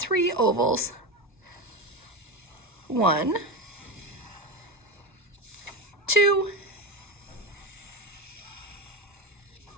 ovals. 1, 2,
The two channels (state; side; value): normal; both; correlation 0.18